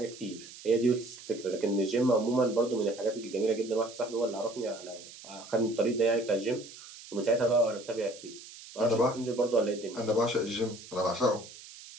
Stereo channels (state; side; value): noise; right; hiss, 17 dB below the sound